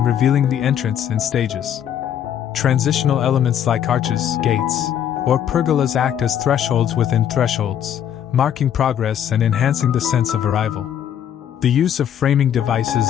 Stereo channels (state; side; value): quieter; right; 9.6 dB